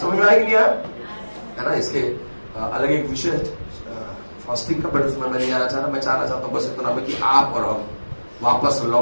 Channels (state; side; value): inverted; both; correlation -1.00